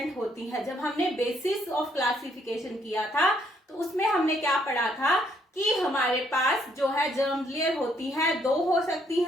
होती है। जब हमने बेसिस ऑफ क्लासिफिकेशन किया था तो उसमें हमने क्या पढ़ा था कि हमारे पास जो है जर्म लेयर होती है, 2 हो सकती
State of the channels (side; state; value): both; normal; correlation 0.70